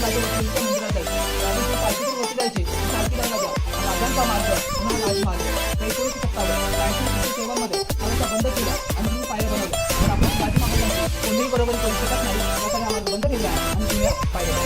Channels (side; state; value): both; identical; correlation 1.00